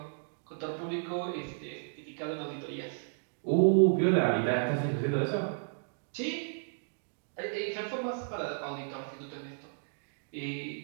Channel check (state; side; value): silent; left; digital silence